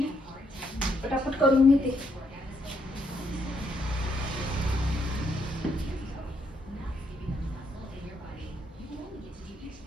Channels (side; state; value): both; normal; correlation 0.75